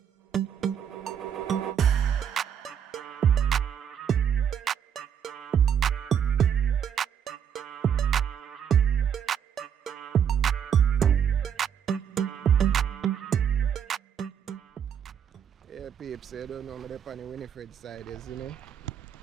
Yeah, peeps, you don't know me up on the Winniefred side, you know.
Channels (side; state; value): left; quieter; 8.3 dB